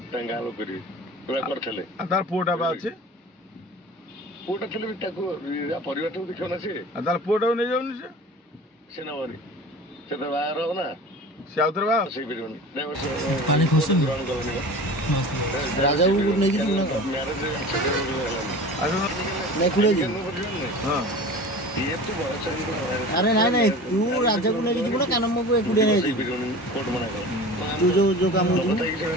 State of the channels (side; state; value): both; normal; correlation 0.37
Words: ତାଙ୍କ ଗାଁ ଲୋକ କରିବେ ପୁରା କରିଥିଲେ ତାର ପୁଅଟା ବା ଅଛି ପୁଅଟା ଥିଲେ ବି ତାକୁ ପରିବାରଟାକୁ ଦେଖିବ ନା ସିଏ ତାର ପୁଅଟାକୁ ନେଇଯାଉନି ସେ ନବନି ସେ ତ ବାହାଘର ହବ ନା ସେ ଆଉଥରେ ବାହା ହେଇପାରିବନି ଗ୍ରହଣ କଲନି ରାଜାକୁ ନେଇକି ଯିବୁ ନା ମ୍ୟାରେଜ ଆରେ ନାଇଁ ନାଇଁ ତୁ ରାଜାକୁ ନେଇକି ଯିବୁ ନା କାନମକୁ ଏକୁଟିଆ ନେଇକି କୋର୍ଟ ମନା କର ତୁ ଯୋଉ କାମ ମ୍ୟାରେଜ